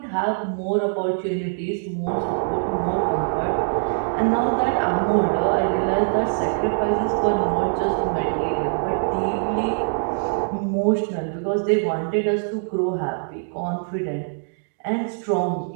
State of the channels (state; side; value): silent; left; digital silence